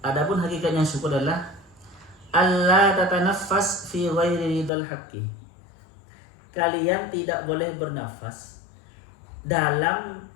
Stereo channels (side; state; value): right; drops out; at 4.7 s